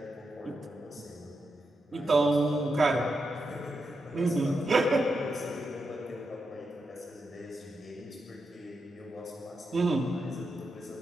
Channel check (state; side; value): normal; both; correlation 0.86